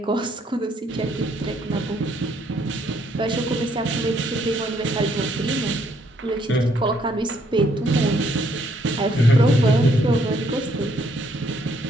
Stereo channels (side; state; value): both; normal; correlation 0.69